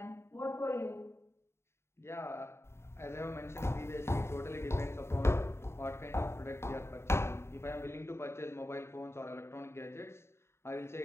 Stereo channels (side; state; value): right; late; 0.13 ms